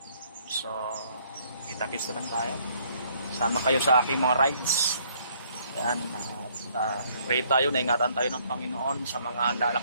So kita-kits na lang tayo. Sama kayo sa aking mga rides. Ayan, pray tayo, naingatan tayo ng Panginoon sa mga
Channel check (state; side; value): inverted; both; correlation -0.65